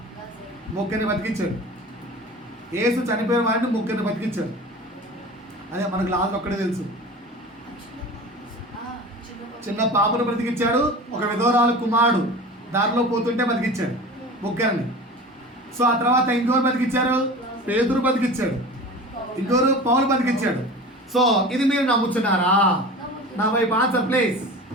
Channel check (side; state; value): both; normal; correlation 0.36